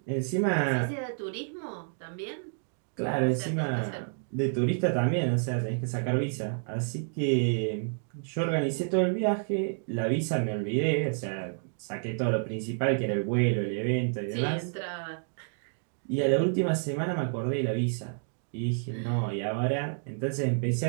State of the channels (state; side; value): silent; left; digital silence